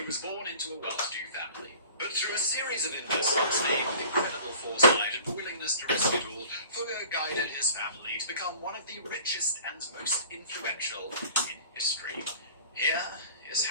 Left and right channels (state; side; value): inverted; both; correlation -0.46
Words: was born into a well-to-do family, but through a series of investments made with incredible foresight and willingness to risk it all, Fugger guided his family to become one of the richest and most influential in history. Here is